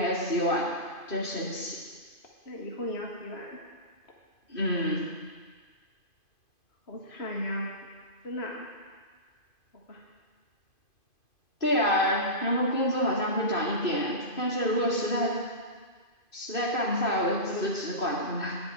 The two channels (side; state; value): right; late; 2.5 ms